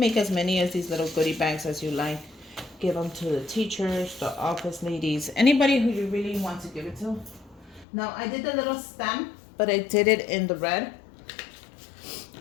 as many as these little goodie bags as you like. Give them to the teachers, the office ladies, anybody who you really want to give it to. Now I did the little stem, but I did it in the red.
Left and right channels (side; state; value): right; drops out; at 7.9 s